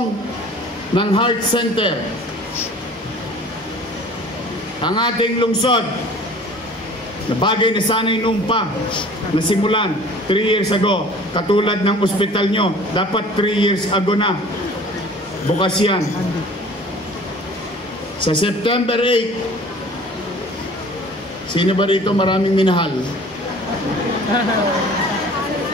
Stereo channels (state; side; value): normal; both; correlation 0.47